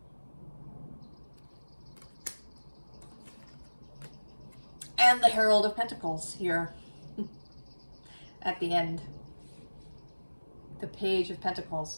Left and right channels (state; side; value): inverted; both; correlation -1.00